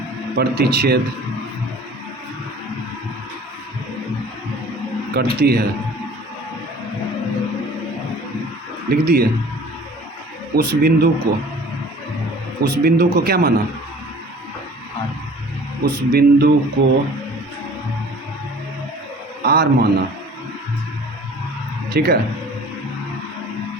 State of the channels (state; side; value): normal; both; correlation 0.48